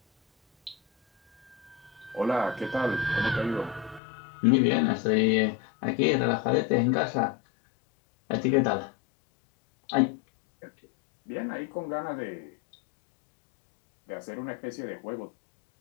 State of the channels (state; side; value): drops out; right; at 4.0 s